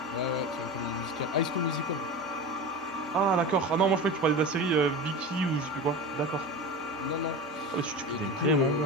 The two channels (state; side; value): normal; both; correlation 0.28